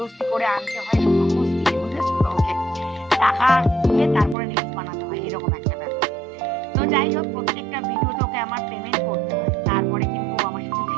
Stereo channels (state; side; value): drops out; left; at 4.4 s